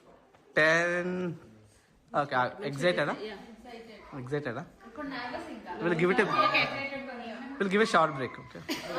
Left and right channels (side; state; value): both; identical; correlation 1.00